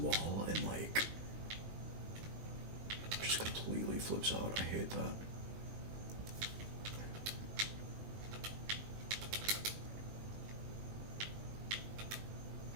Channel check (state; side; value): late; left; 20 ms